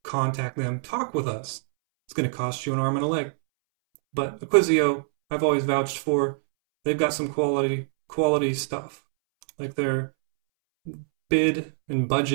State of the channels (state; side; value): silent; left; 62 dB below the other